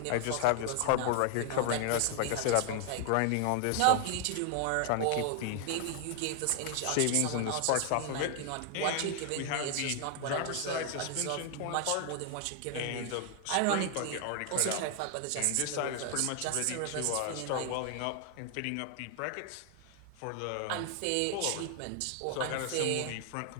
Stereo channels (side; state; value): both; different; correlation 0.00